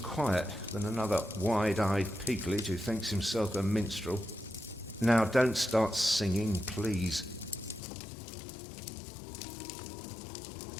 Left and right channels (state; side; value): drops out; right; at 7.8 s